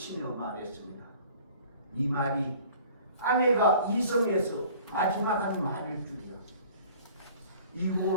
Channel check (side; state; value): both; inverted; correlation -0.50